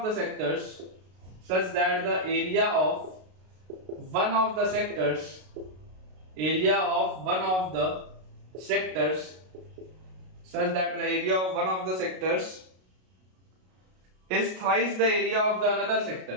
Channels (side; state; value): left; late; 32 ms